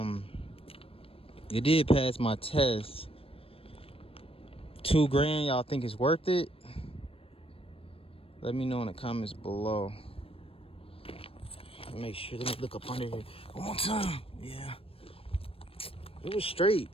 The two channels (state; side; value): late; right; 0.27 ms